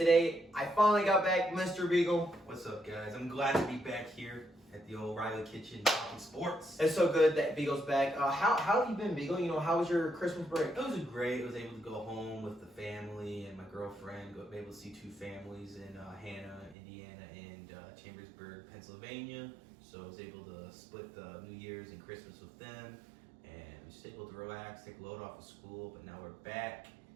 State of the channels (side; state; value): left; drops out; at 16.8 s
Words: I finally got back, Mr. Beagle. What's up, guys? I'm glad to be back here at the old Riley Kitchen talking sports. It's so good that Beagle's back. How have you been, Beagle? How was your Christmas break? It was great. I was able to go home with the family and my girlfriend. Be able to see two families in Hannah, Indiana, and Chambersburg, Pennsylvania. So I was able to split the New Year's and Christmas with them, and was just able to relax, take a load off of school. But now we're back.